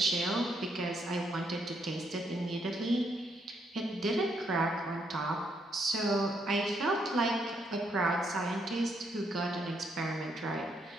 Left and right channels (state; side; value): normal; both; correlation 0.75